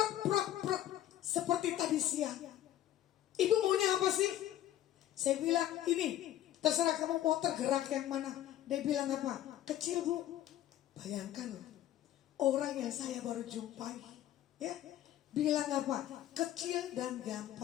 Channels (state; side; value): quieter; right; 12.7 dB